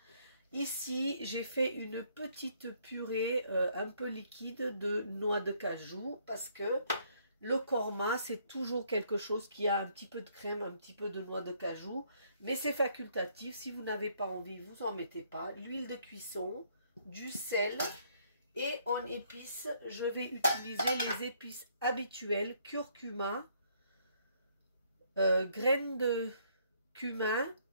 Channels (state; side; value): inverted; both; correlation -0.67